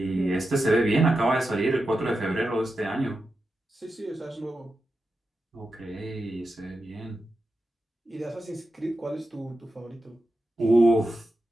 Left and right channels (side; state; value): both; normal; correlation 0.90